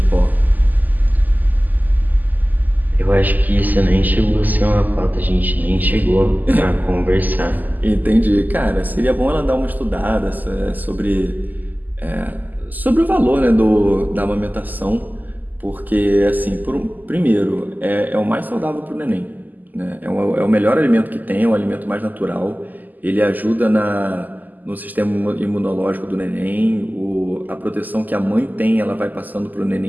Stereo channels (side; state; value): left; late; 0.083 ms